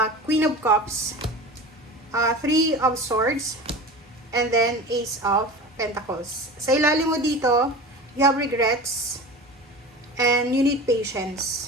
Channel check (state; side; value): normal; both; correlation 0.33